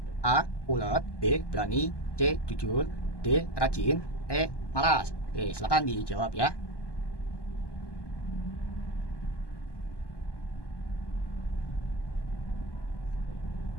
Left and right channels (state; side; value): late; right; 1.2 ms